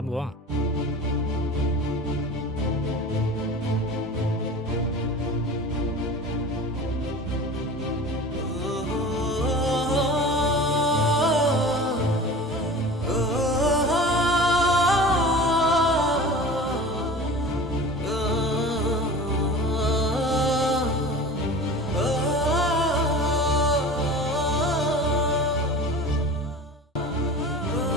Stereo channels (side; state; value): both; normal; correlation 0.37